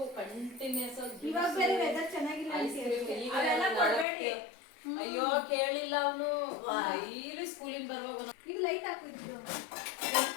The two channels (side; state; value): right; drops out; at 4.0 s